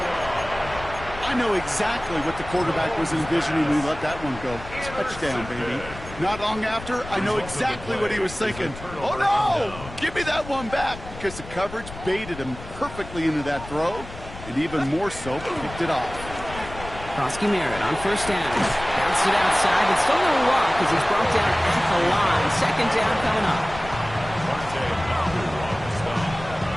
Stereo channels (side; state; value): left; noise; rumble, 13 dB below the sound